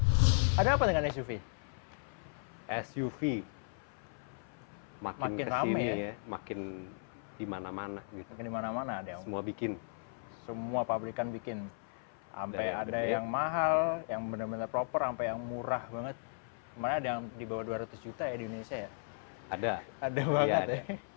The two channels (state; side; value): silent; right; 54 dB below the other